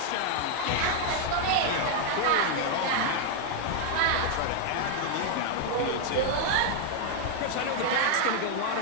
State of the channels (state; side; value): different; both; correlation 0.01